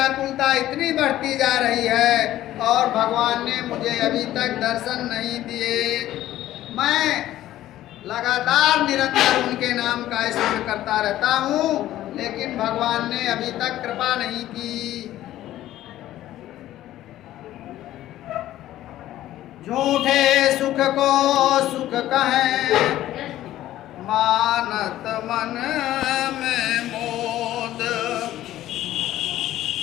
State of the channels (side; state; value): right; quieter; 13.9 dB